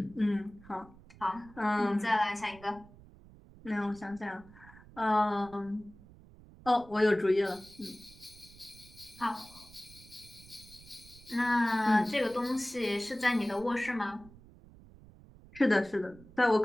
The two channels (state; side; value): noise; right; rumble, 22 dB below the sound